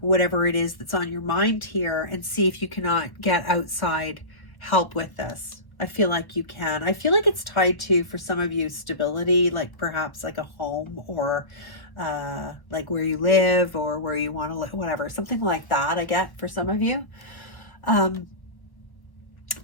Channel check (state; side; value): late; right; 1.1 ms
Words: it is that's on your mind here and see if you cannot get outside help with this. I feel like you can. I feel like it's tied to, for some of you, stability, like perhaps like a home, or like where you live or where you want to live, whatever, something like that. I get for some of you.